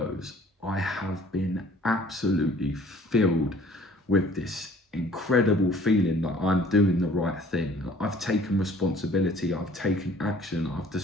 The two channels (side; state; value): both; normal; correlation 0.53